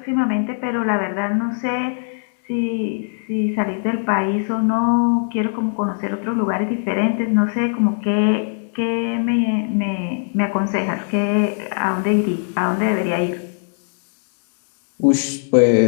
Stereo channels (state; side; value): silent; right; digital silence